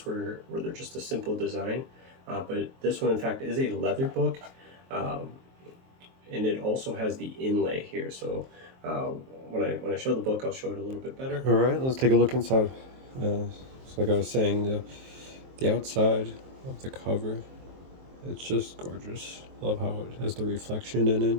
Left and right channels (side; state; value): left; late; 23 ms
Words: where they're just a simple design. But this one, in fact, is a leather book. And it also has the inlay here. So when I show the book, I'll show it a little bit better. All right, let's take a look inside. So like I was saying, the outside of the cover, it's just gorgeous. Love how it has the reflection in it.